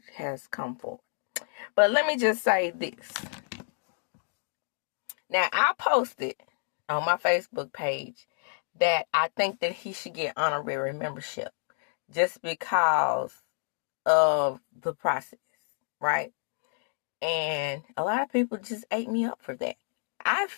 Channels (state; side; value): silent; right; digital silence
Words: has come forward. But let me just say this. Now, I posted on my Facebook page that I think that he should get honorary membership just because of the process, right? And a lot of people just ate me up for that. I